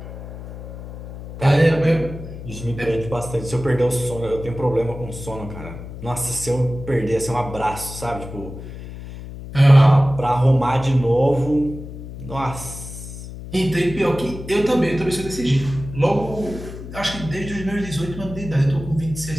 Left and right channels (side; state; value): left; noise; hum, 11 dB below the sound